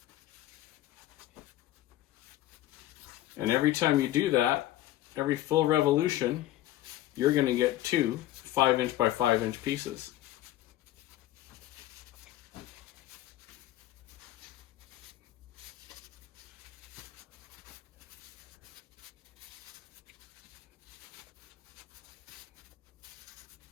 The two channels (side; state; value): right; quieter; 14.4 dB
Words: And every time you do that, every full revolution, you're going to get two 5" by 5" pieces.